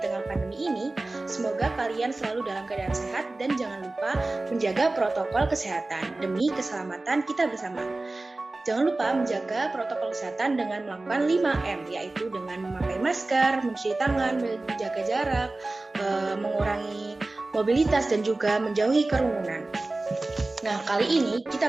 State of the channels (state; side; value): quieter; left; 3.0 dB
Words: tengah pandemi ini, semoga kalian selalu dalam keadaan sehat dan jangan lupa menjaga protokol kesehatan demi keselamatan kita bersama. Jangan lupa menjaga protokol kesehatan dengan melakukan 5M, yaitu dengan memakai masker, mencuci tangan, menjaga jarak, mengurangi mobilitas, dan juga menjauhi kerumunan. Nah, kali ini